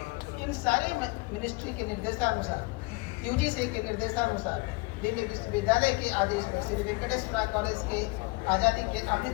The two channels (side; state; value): right; quieter; 25.8 dB